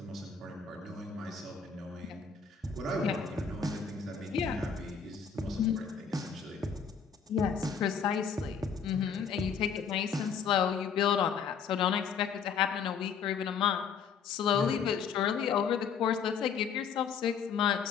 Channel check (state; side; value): quieter; right; 6.6 dB